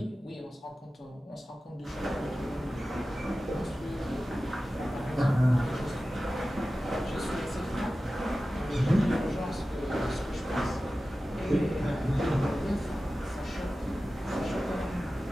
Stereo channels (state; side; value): normal; both; correlation 0.95